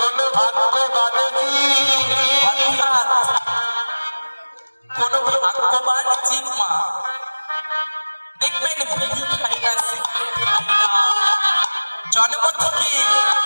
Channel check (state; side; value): inverted; both; correlation -1.00